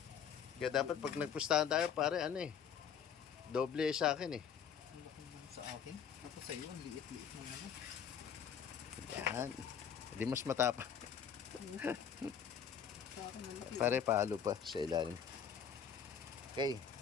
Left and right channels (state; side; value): quieter; right; 7.6 dB